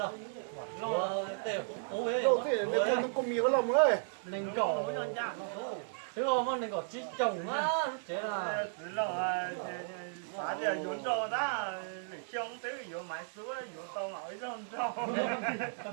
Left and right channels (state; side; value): silent; left; digital silence